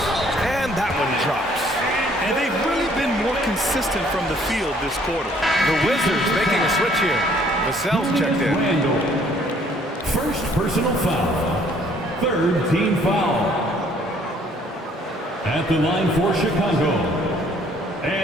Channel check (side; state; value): both; normal; correlation 0.61